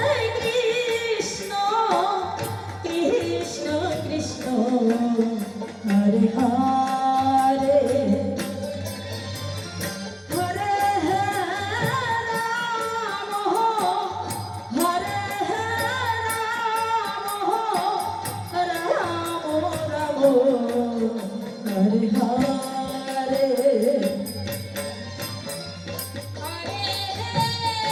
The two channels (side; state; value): both; identical; correlation 1.00